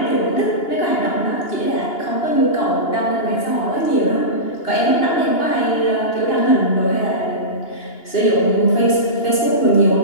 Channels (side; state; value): right; late; 2.8 ms